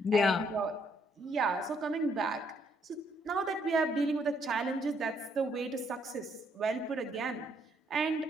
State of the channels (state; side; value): normal; both; correlation 0.70